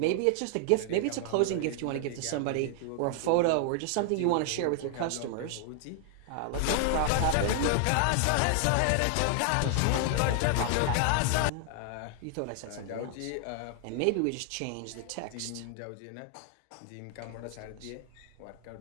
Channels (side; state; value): both; different; correlation 0.00